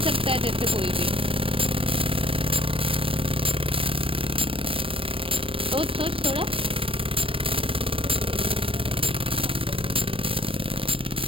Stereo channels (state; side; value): late; left; 0.26 ms